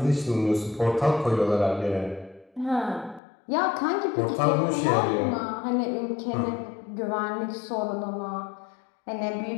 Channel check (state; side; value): drops out; right; at 3.2 s